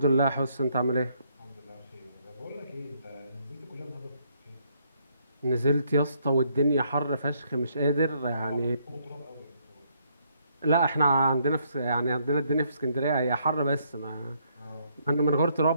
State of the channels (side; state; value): both; inverted; correlation -0.71